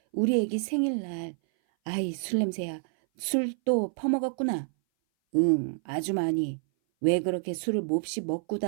우리 애기 생일날. 아이, 술 냄새야. 술 또 퍼먹었구나. 응, 아주 많이. 왜 그렇게 술을 몹시 먹고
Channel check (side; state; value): left; silent; 57 dB below the other